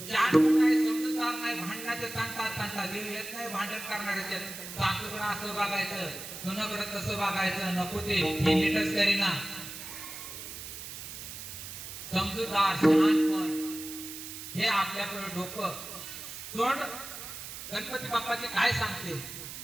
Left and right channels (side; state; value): right; noise; hiss, 10 dB below the sound